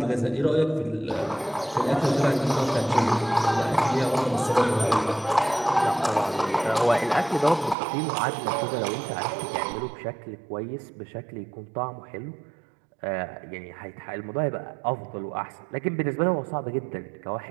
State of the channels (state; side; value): drops out; left; at 7.8 s